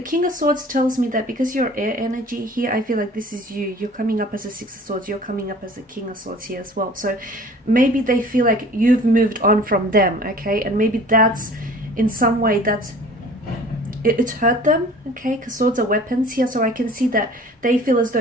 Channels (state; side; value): normal; both; correlation 0.47